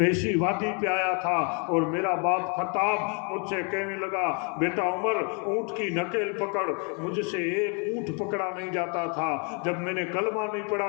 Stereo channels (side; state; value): right; quieter; 37.2 dB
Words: اسی وادی پہ آیا تھا، اور میرا باپ خطاب مجھ سے کہنے لگا بیٹا عمر اونٹ کی نکیل پکڑ، مجھ سے ایک اونٹ پکڑا نہیں جاتا تھا، جب میں نے کلمہ نہیں